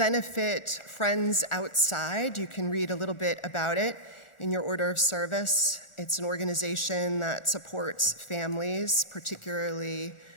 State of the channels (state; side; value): late; right; 1.4 ms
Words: friends outside. You can read a little bit about it in your order of service. It's an organization that supports families, particularly